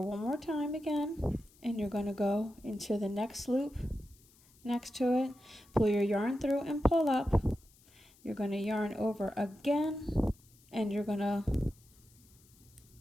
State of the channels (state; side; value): noise; left; hiss, 28 dB below the sound